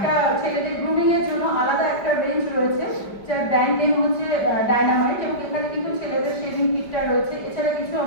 ছেলেদের গ্রুমিং এর জন্য আলাদা একটা রেঞ্জ রয়েছে, যার ব্র্যান্ড নেম হচ্ছে ডায়নামাইট, এবং এখানে কিন্তু ছেলেদের শেভিং কিটটা রয়েছে। এছাড়া কিছু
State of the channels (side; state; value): right; late; 5.1 ms